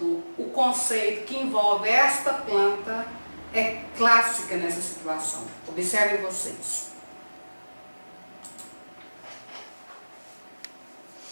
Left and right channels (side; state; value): both; inverted; correlation -1.00